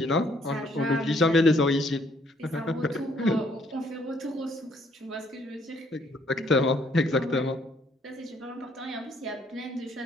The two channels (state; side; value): normal; both; correlation 0.66